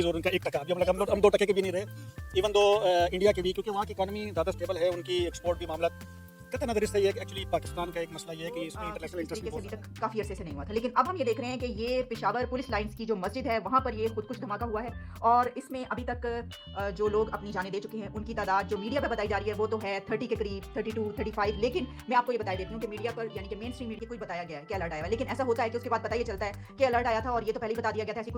और उनका 1 टका, अभी हम 2 टके के भी नहीं रहे इवन दो इंडिया के भी, क्योंकि वहाँ की इकॉनमी ज़्यादा स्टेबल है, उनकी एक्सपोर्ट भी मामला कहते नजर से ये एक्चुअली पाकिस्तान का एक मसला ये है कि इसमें इंटरनेशनल इंटरेस्ट अभी तक काफी अरसे से नहीं हुआ था, लेकिन अब हम ये देख रहे हैं कि ये पेशावर पुलिस लाइंस की जो मस्जिद है वहाँ पर ये खुदकुश धमाका हुआ है और इसमें अभी तक जो लोग अपनी जानें दे चुके हैं उनकी तादाद जो मीडिया पे बताई जा रही है वो तो है 30 के करीब, 32, 35, लेकिन मैं आपको ये बता देती हूँ कि मीडिया पर यानी कि मेन स्ट्रीम मीडिया को बताया गया है कि अलर्ट आया है, लेकिन ऐसा होता है कि उसके बाद पता ये चलता है कि अलर्ट आया था और ये तो पहले ही बता दिया गया था, ऐसी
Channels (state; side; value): identical; both; correlation 1.00